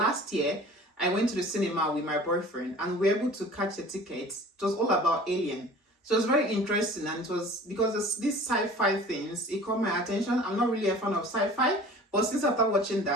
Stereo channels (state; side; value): normal; both; correlation 0.44